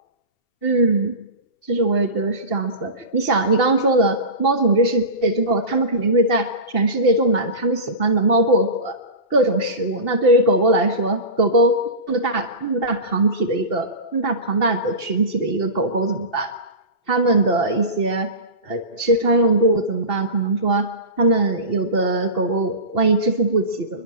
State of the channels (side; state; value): right; late; 2.7 ms